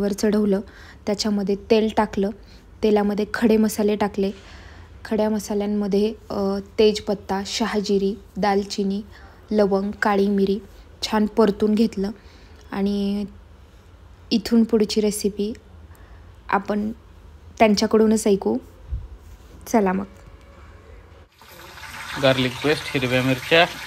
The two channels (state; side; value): identical; both; correlation 1.00